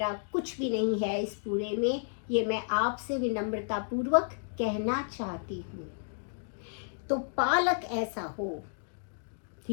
कुछ भी नहीं है इस पूरे में। ये मैं आपसे विनम्रता पूर्वक कहना चाहती हूँ। तो पालक ऐसा हो,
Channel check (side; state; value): right; silent; digital silence